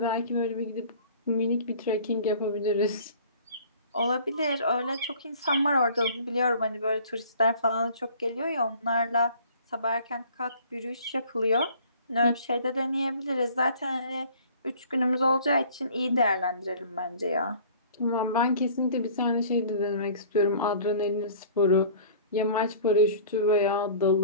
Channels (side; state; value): both; inverted; correlation -0.49